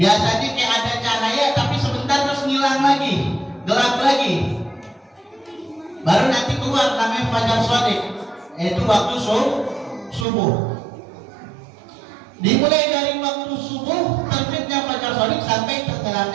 kayak ada cahaya tapi sebentar terus ngilang lagi, gelap lagi. baru nanti keluar namanya fajar shadiq, yaitu waktu subuh. Dimulai dari waktu subuh terbitnya fajar shadiq sampai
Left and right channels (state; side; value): drops out; left; at 10.2 s